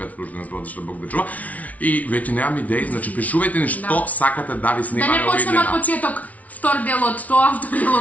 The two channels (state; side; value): late; right; 0.070 ms